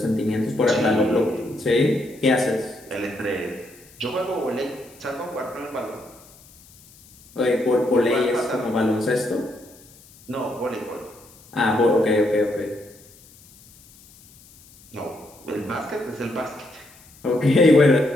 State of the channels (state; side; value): noise; left; hiss, 25 dB below the sound